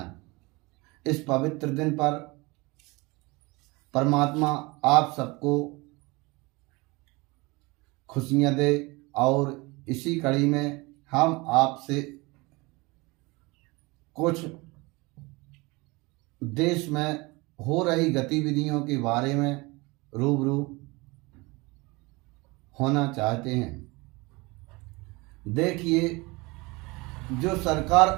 इस पवित्र दिन पर परमात्मा आप सबको खुशियां दे और इसी कड़ी में हम आपसे कुछ देश में हो रही गतिविधियों के बारे में रूबरू होना चाहते हैं। देखिए, जो सरकार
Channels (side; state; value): left; quieter; 24.7 dB